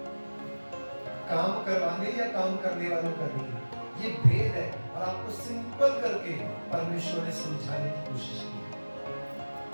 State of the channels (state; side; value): inverted; both; correlation -1.00